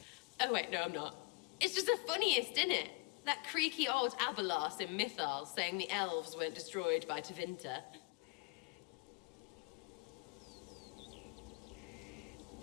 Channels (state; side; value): quieter; right; 27.8 dB